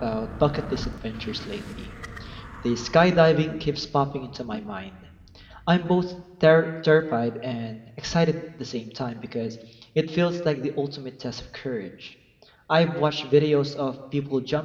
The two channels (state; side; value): identical; both; correlation 1.00